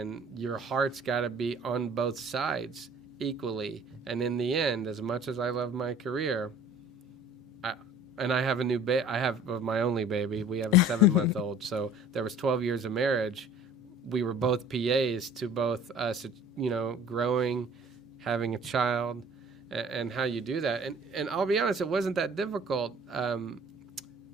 your heart's got to be on both sides equally. And in the end, as much as I love my career, I have a new I have my only baby. We have a 7-month-old. So there was 12 years of marriage. We were both PAs to both us, you know, growing, having a child, and how you do that. And I'll be honest, it wasn't that difficult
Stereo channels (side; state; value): both; normal; correlation 0.48